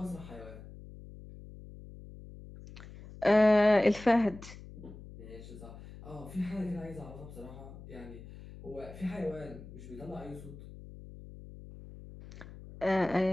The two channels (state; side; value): noise; left; hum, 16 dB below the sound